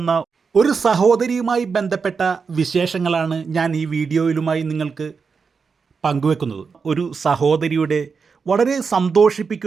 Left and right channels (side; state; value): left; quieter; 5.4 dB